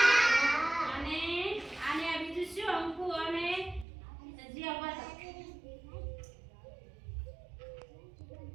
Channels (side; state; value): left; drops out; at 3.9 s